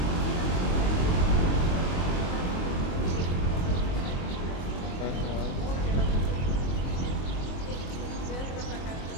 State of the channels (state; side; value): late; right; 22 ms